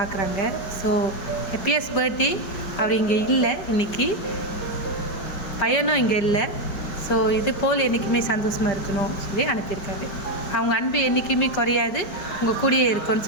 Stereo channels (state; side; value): late; right; 5.1 ms